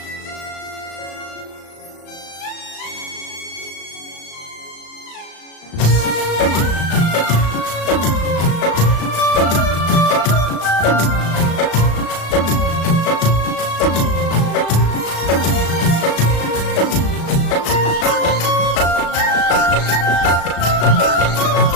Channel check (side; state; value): right; late; 36 ms